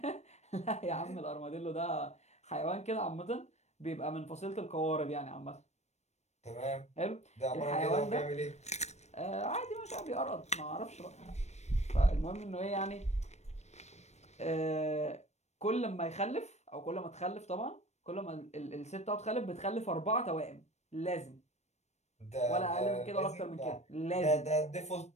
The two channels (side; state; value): right; late; 0.32 ms